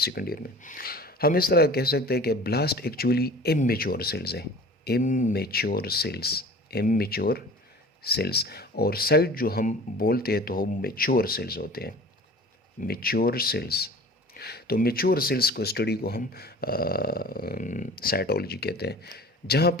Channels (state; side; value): normal; both; correlation 0.42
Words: ईयर में हम इस तरह कह सकते हैं कि ब्लास्ट एक्चुअली इमेच्योर सेल्स हैं, इमेच्योर सेल्स, इमेच्योर सेल्स, और साइट जो हम बोलते हैं तो वो मेच्योर सेल्स होते हैं, मेच्योर सेल्स। तो मेच्योर सेल्स को स्टडी को हम साइटोलॉजी कहते हैं। जहाँ